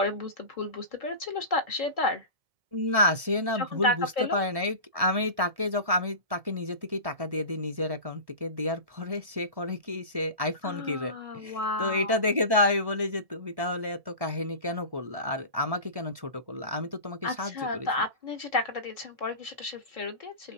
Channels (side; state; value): left; late; 1.1 ms